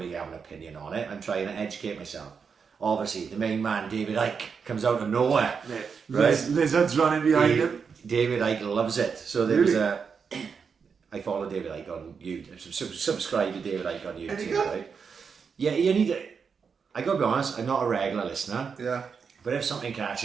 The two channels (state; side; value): quieter; left; 6.0 dB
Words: have an opinion on it. I'm trying to educate myself. Obviously, the main man, David Icke, comes out of nowhere. Yeah. Right? Lizards running behind him. David Icke loves it. So there was I follow David Icke on YouTube. Subscribe to David Icke on YouTube, right? Yeah, you need to. I gotta be honest, I'm not a regular listener. Yeah. But if something